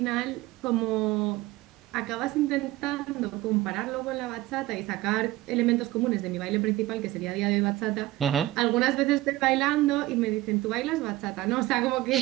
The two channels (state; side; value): quieter; left; 17.4 dB